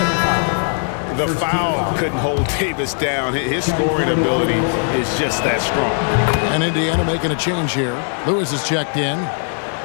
The foul couldn't hold Davis down. His scoring ability is just that strong. And Indiana making a change here. Lewis is checked in.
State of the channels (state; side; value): silent; right; 56 dB below the other